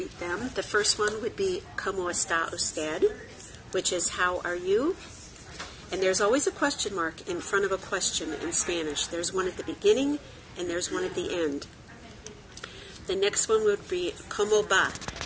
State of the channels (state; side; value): identical; both; correlation 1.00